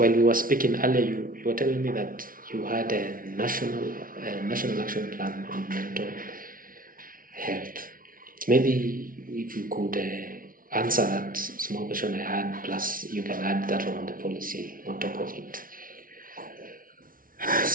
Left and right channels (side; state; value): left; late; 0.41 ms